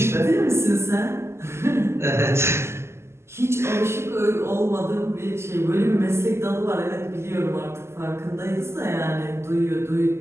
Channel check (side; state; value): left; late; 0.13 ms